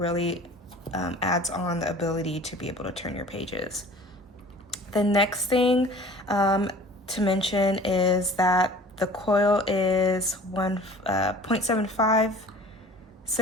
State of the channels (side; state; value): both; normal; correlation 0.45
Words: adds on the ability to be able to turn your pages. The next thing to mention is that the coil is 1.75